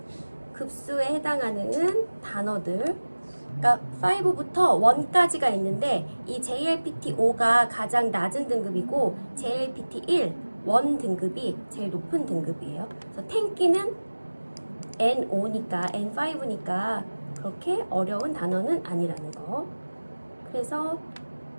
급수에 해당하는 단어들, 그러니까 5부터 1까지가 있는데 이 JLPT5가 가장 낮은 등급이고 JLPT1, 1 등급이 제일 높은 등급이에요. 그래서 텐키는 N5니까 N5니까 그렇게 어려운 단어는 아니라는 거. 그래서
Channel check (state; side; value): inverted; both; correlation -1.00